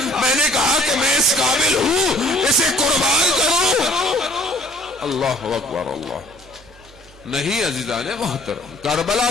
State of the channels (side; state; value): both; normal; correlation 0.54